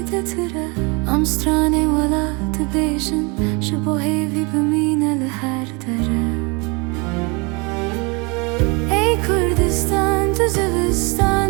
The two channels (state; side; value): quieter; left; 29.6 dB